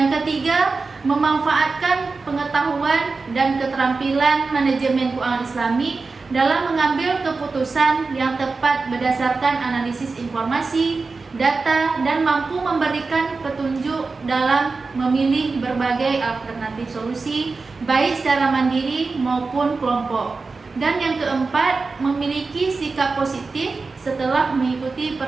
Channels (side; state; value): left; quieter; 4.1 dB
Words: ketiga, memanfaatkan pengetahuan dan keterampilan manajemen keuangan Islami dalam mengambil keputusan yang tepat berdasarkan analisis informasi, data, dan mampu memberikan petunjuk dalam memilih berbagai alternatif solusi, baik secara mandiri maupun kelompok. Dan yang keempat, memiliki sikap positif setelah mengikuti